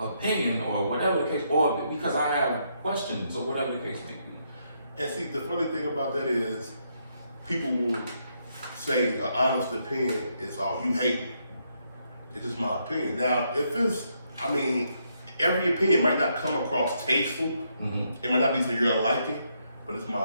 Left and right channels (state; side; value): inverted; both; correlation -0.77